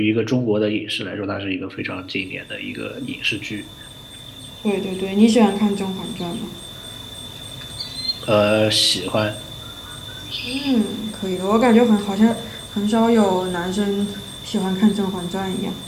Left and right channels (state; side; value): identical; both; correlation 1.00